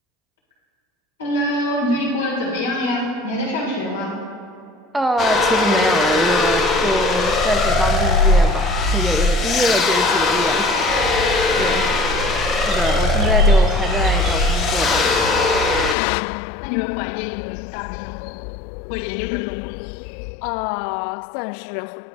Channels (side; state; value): right; drops out; at 16.0 s